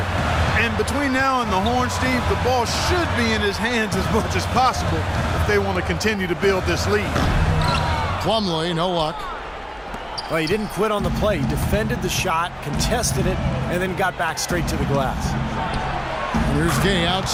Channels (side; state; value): both; identical; correlation 1.00